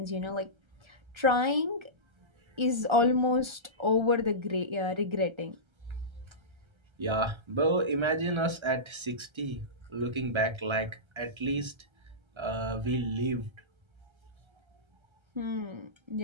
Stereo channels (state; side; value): late; left; 1.3 ms